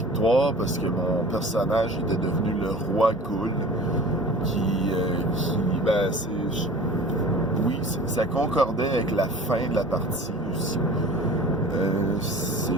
parce que mon personnage était devenu le roi goule ça concordait avec la fin de la partie aussi.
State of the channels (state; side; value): normal; both; correlation 0.42